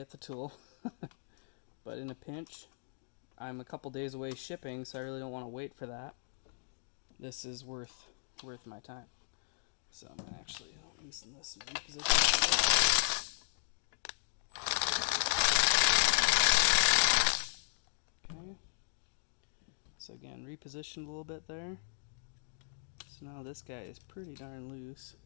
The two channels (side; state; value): right; silent; digital silence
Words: the tool. But in a pinch, I'm a couple days away shipping, so I really don't want to wait for that. This is worth my time. So I'm going to actually loosen this and reposition it. Okay. So again, repositioned a little bit there. So now this guy is pretty darn loose.